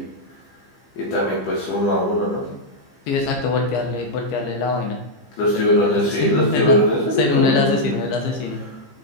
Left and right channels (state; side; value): late; right; 15 ms